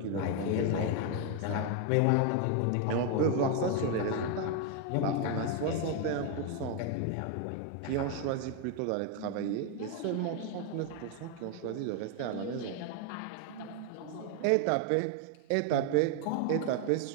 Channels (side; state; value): both; different; correlation 0.01